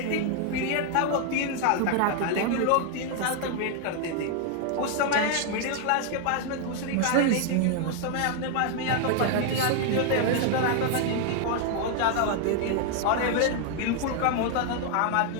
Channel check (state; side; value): different; both; correlation 0.00